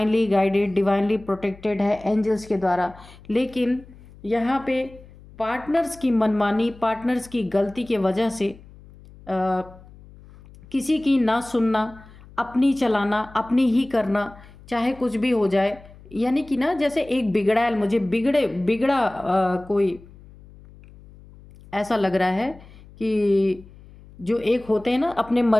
गाइडेड, डिवाइनली प्रोटेक्टेड है एंजल्स के द्वारा। लेकिन यहाँ पे पार्टनर्स की मनमानी, पार्टनर्स की गलती के वजह से किसी की ना सुनना, अपनी चलाना, अपनी ही करना, चाहे कुछ भी हो जाए, यानी कि ना जैसे एक बिगड़ा बिगड़ा कोई ऐसा लग रहा है कि जो एक होते हैं ना अपने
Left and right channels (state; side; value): noise; left; hum, 22 dB below the sound